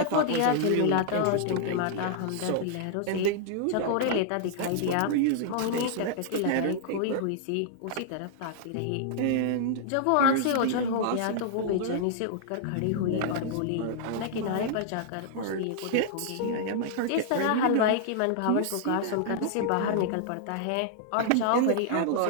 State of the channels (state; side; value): different; both; correlation -0.01